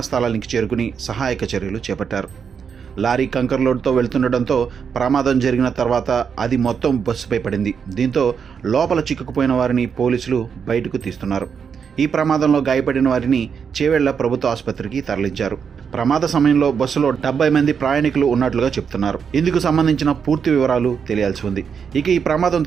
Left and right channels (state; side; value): quieter; left; 6.7 dB